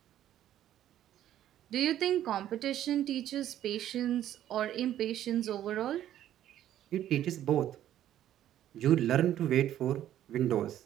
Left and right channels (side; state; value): left; quieter; 11.9 dB